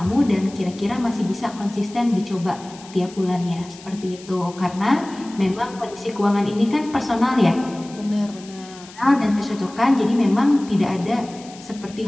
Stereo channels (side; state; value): left; noise; hiss, 20 dB below the sound